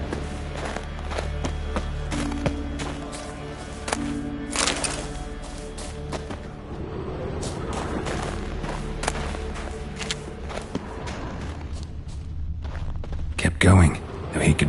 Kept going. though he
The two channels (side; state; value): both; identical; correlation 1.00